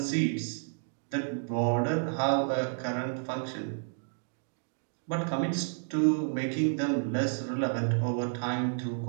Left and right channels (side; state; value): left; silent; digital silence